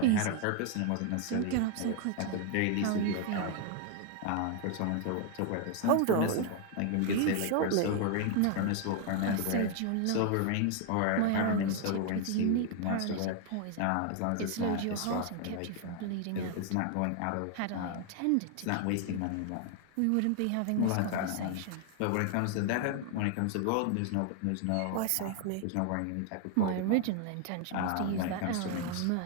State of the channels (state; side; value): different; both; correlation 0.00